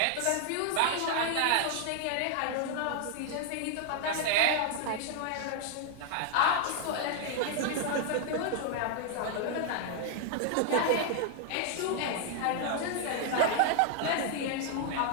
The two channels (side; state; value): both; different; correlation 0.00